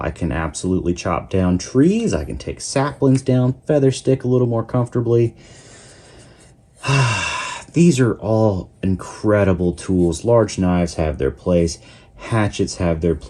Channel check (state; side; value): identical; both; correlation 1.00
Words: I can absolutely chop down trees. I can take saplings down, feather stick a little more comfortably. These are all incredible tools. Large knives have their place. Hatchets have their